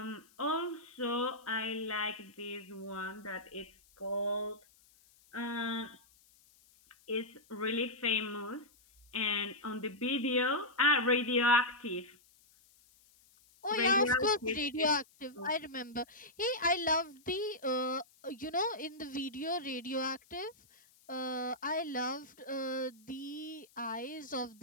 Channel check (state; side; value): noise; left; hiss, 29 dB below the sound